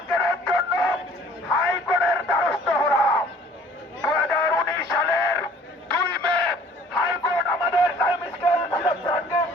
জন্য হাইকোর্টের দ্বারস্থ হলাম। 2019 সালের 2 মে হাইকোর্ট আমাদের টাইম স্কেল সিলেকশনকে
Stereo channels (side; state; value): both; normal; correlation 0.53